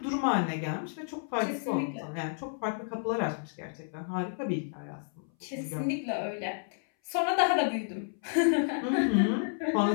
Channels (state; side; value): silent; right; 57 dB below the other